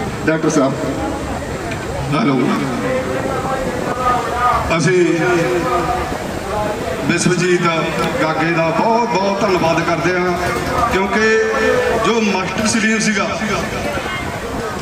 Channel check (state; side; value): identical; both; correlation 1.00